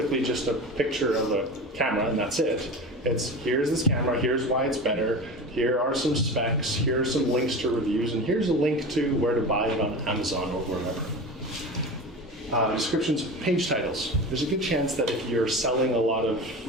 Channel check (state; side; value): normal; both; correlation 0.30